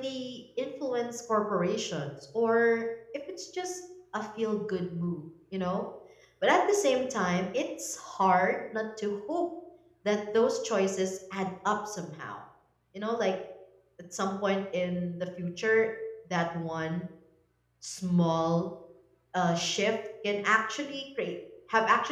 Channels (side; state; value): both; identical; correlation 1.00